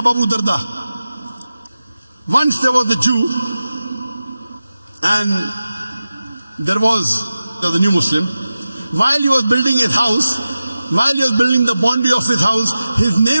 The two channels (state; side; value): inverted; both; correlation -0.94